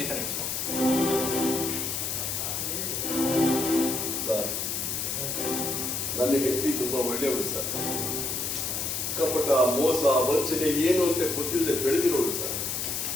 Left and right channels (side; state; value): left; noise; hiss, 2 dB below the sound